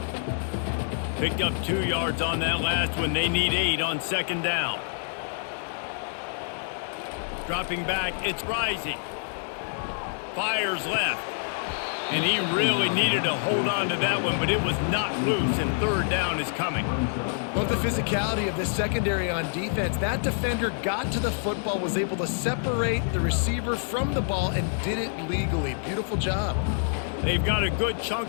Picked up 2 yards on that last one. They need 8 on second down. Dropping back, it's rising. Fires left. And he really needed to hold on to that one, but it was not loose, and third down is coming. Love the physicality of this secondary on defense. That defender got to the football, was able to separate the receiver from the ball, and did it legally. Beautiful job. They've got a good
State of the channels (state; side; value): silent; right; digital silence